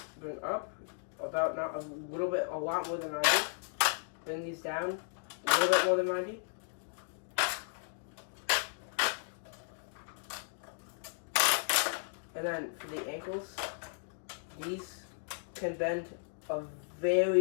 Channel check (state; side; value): silent; right; digital silence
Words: Bring up about not a little bit, a lot more than 90. Bring these down a little bit more than 90. And then for the ankles, these can bend a